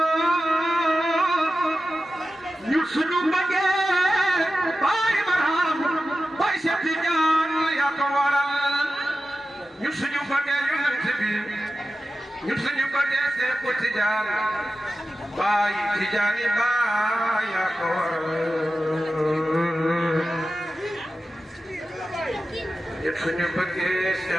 ñun suñu ko dee Seexu Tijaan baay Tijaani baay yaa ko waral ñun suñu bëggee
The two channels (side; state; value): both; normal; correlation 0.93